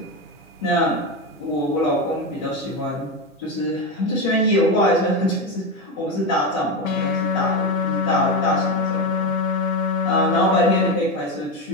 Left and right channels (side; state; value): both; normal; correlation 0.15